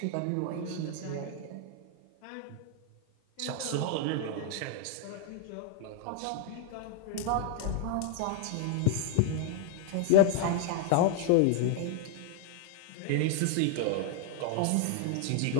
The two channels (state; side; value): different; both; correlation 0.00